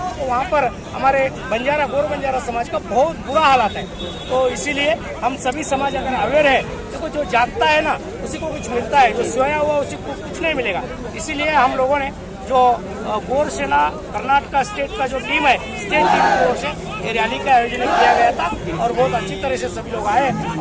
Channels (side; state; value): both; identical; correlation 1.00